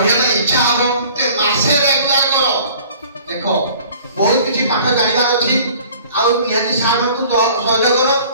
ইচ্ছা হবো তে মাসে রেগুলার করো দেখো बहुत किसी पाठ जानिबार अछि आ निहाती सार को सहयोग करो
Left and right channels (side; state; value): both; inverted; correlation -0.50